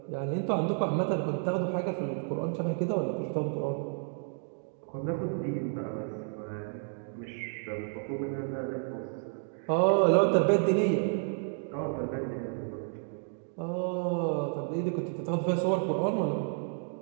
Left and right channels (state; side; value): silent; left; 57 dB below the other